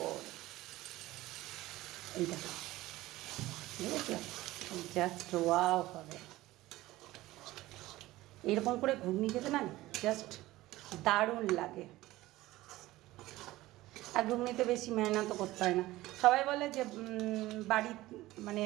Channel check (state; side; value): quieter; left; 17.4 dB